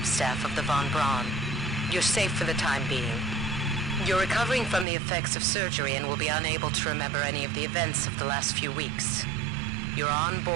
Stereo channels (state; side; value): drops out; left; at 4.9 s